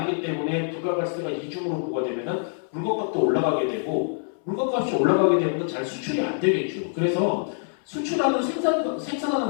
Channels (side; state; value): right; silent; 61 dB below the other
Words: 때문에 부가가치세가 이중으로 부과되면은 물건값도 올라가게 되고 물건값이 올라가게 되면 잘 수출이 안 되겠죠. 그래서 수출하는